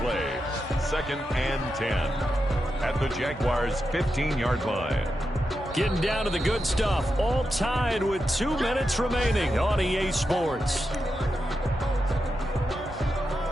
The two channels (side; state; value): both; normal; correlation 0.88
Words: 2nd and 10 at the Jaguars' 15-yard line. Getting down to the good stuff, all tied with 2 minutes remaining on EA Sports.